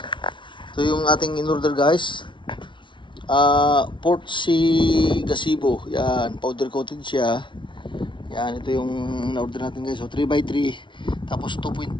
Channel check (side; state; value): right; late; 0.24 ms